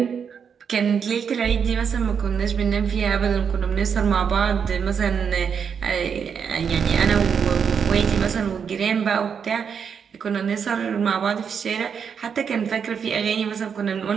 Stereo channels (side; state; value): left; quieter; 6.9 dB